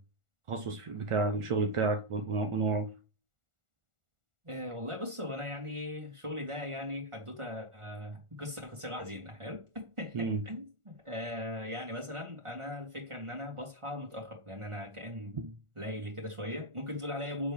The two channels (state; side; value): late; left; 1.4 ms